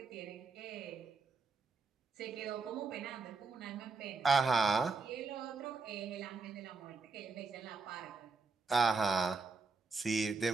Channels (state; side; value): quieter; left; 4.2 dB